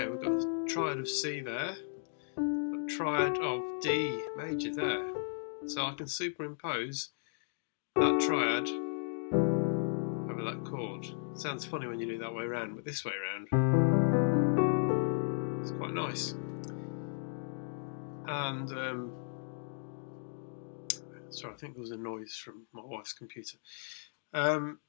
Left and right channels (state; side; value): silent; right; digital silence